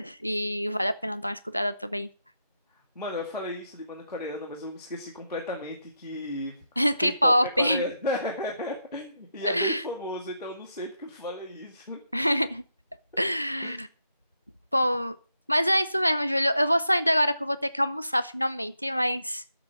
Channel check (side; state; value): both; inverted; correlation -0.84